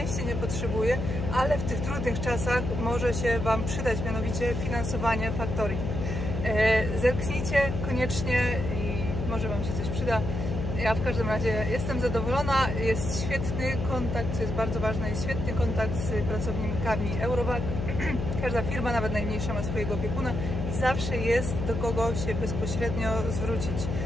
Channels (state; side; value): noise; left; hum, 3 dB below the sound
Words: nie potrzebuję, ale w tych trudnych czasach może się Wam przydać, mianowicie finansowanie factoring. Zerknijcie koniecznie i może Wam się coś przyda. Ja w każdym razie jestem zadowolona, jest świetny kontakt, co jest bardzo ważne, jest świetny kontakt z pracownikami Eurovac. Każda firma, nawet najmniejsza, ma swojego opiekuna i zawsze jest do kogo się bezpośrednio zwrócić.